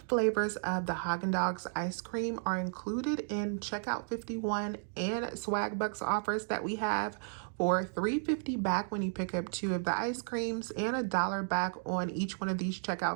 flavors of the Haagen-Dazs ice cream are included in Checkout 51 and Swag Bucks offers that we have for $3.50 back when you pick up 2 of the ice creams and $1 back on each one of these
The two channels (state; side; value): silent; left; digital silence